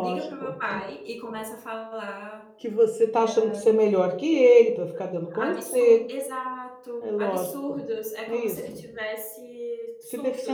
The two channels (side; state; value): both; identical; correlation 1.00